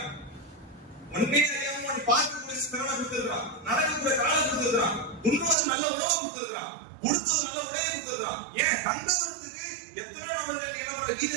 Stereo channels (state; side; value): drops out; left; at 5.6 s